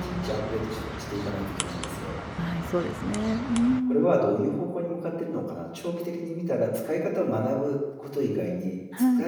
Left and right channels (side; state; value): both; identical; correlation 1.00